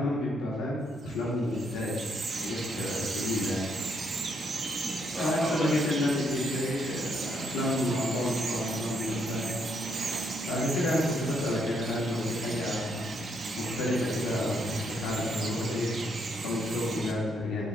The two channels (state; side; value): normal; both; correlation 0.74